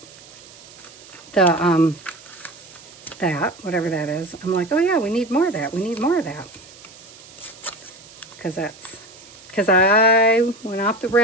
whatever that is, I'm like, oh yeah, we need more of that. We need more of that. Because I went off the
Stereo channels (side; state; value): right; noise; hiss, 21 dB below the sound